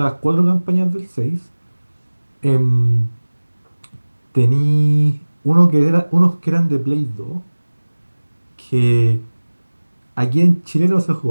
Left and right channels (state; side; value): inverted; both; correlation -1.00